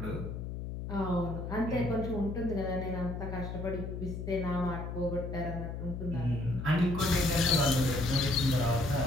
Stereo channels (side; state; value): left; noise; hum, 6 dB below the sound